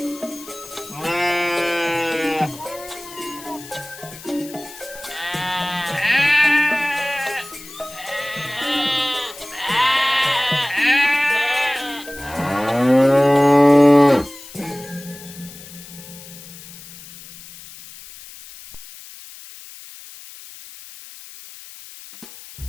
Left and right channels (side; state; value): left; noise; hiss, 17 dB below the sound